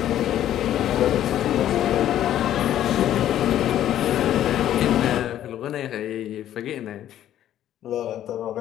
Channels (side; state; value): right; quieter; 11.7 dB